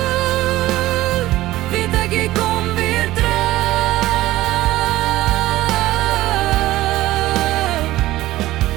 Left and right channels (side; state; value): left; quieter; 16.3 dB